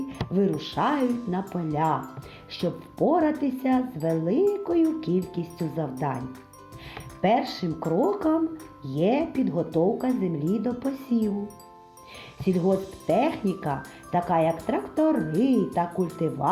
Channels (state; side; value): identical; both; correlation 1.00